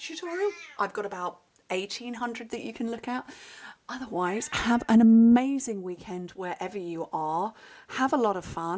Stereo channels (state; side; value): identical; both; correlation 1.00